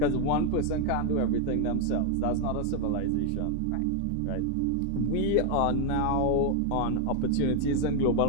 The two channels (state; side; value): different; both; correlation 0.01